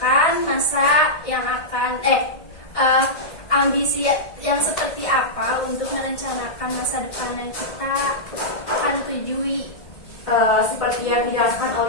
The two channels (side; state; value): right; late; 1.6 ms